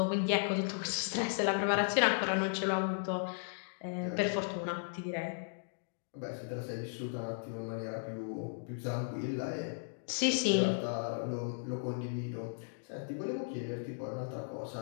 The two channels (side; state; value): right; silent; digital silence